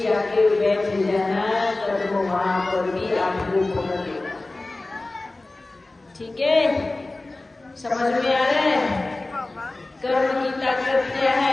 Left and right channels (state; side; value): quieter; right; 3.0 dB